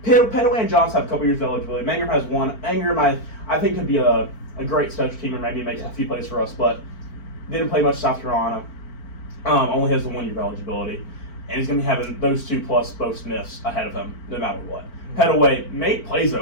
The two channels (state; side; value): late; right; 4.4 ms